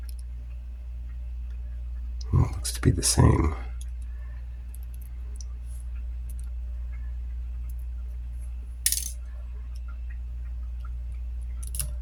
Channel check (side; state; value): both; identical; correlation 1.00